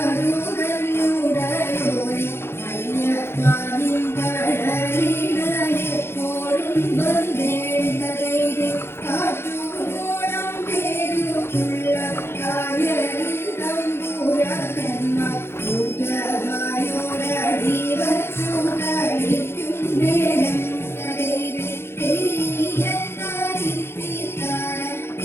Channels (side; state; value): right; late; 0.12 ms